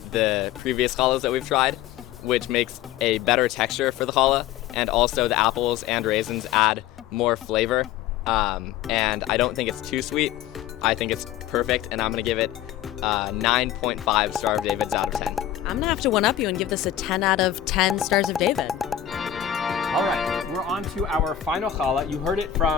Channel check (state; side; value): quieter; right; 11.3 dB